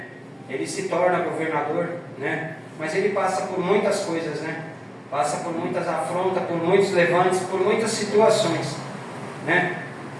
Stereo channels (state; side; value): identical; both; correlation 1.00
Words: Ele se torna governador, né? Mas ele passa por muitas coisas, né? Passa por muitas afrontas, por muitos levantes, por muitas situações, né?